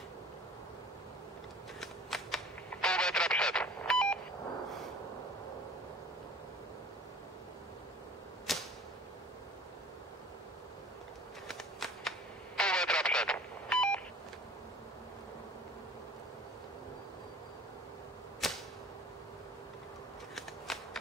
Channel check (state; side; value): normal; both; correlation 0.45